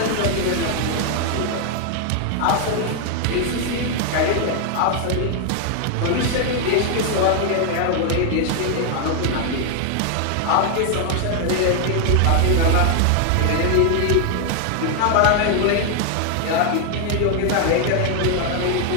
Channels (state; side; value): different; both; correlation 0.00